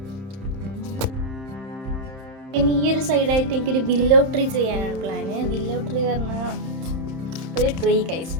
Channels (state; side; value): late; left; 31 ms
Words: പിന്നെ ഈ ഒരു സൈഡായിട്ട് എനിക്കൊരു വില്ലോ ട്രീ ചെയ്യാനാണ് പ്ലാന്. വില്ലോ ട്രീ പറഞ്ഞാൽ ഒരു ട്രീ ഗൈസ്,